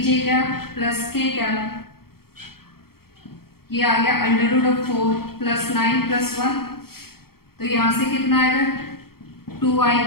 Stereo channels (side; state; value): right; late; 0.94 ms